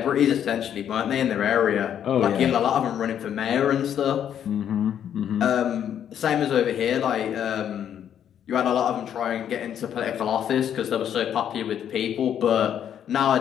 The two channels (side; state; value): right; quieter; 9.5 dB